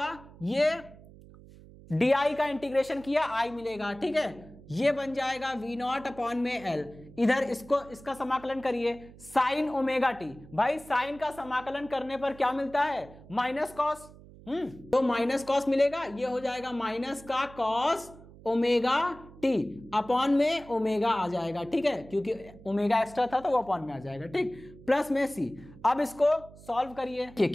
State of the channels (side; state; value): right; noise; hum, 20 dB below the sound